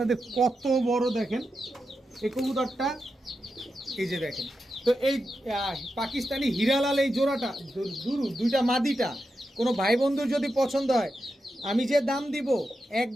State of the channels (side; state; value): both; normal; correlation 0.88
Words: কত বড়, দেখেন এই কবুতরটা, এই যে দেখেন। তো এই পাকিস্তানি হীরালাল এই জোড়াটা দুইটা মাদিটা কোনো ভাই বন্ধুর যদি পছন্দ হয়, আমি যে দাম দিব